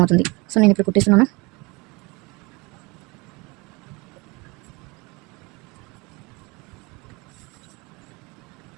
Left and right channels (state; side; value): quieter; left; 26.1 dB